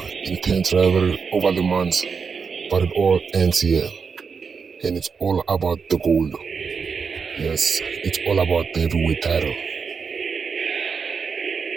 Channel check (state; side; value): quieter; left; 5.6 dB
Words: intense rivalry over the months, but it all ends here. And it's all about the gold. Yes, it's all about the heavyweight title.